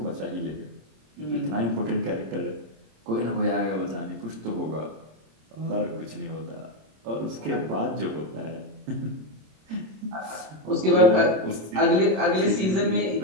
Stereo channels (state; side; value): late; left; 26 ms